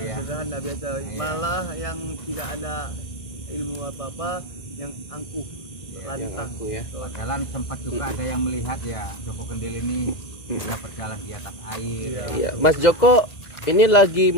ya. sederhana biasa. Iya. Malah yang tidak ada ilmu apa-apa, yang angkuh, Iya, lantang. aku ya. Padahal sempat juga ada yang melihat ya Joko Kendil ini bisa berjalan di atas air. Iya. Ya. Iya, Mas Joko, ini lagi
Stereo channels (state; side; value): late; right; 1.6 ms